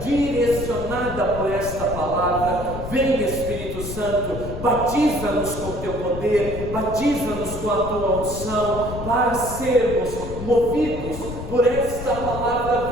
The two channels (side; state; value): left; noise; rumble, 8 dB below the sound